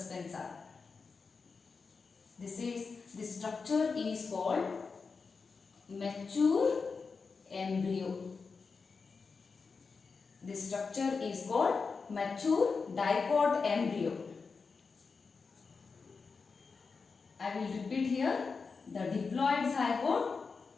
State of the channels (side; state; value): right; quieter; 4.8 dB